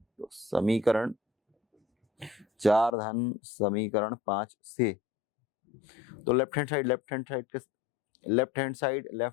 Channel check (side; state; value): right; drops out; at 2.9 s